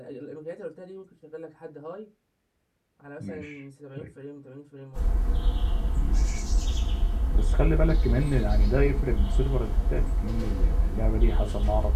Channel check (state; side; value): identical; both; correlation 1.00